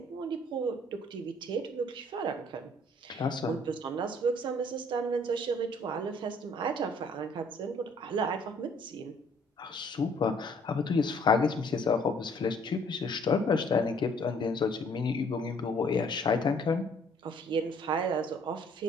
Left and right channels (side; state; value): both; normal; correlation 0.60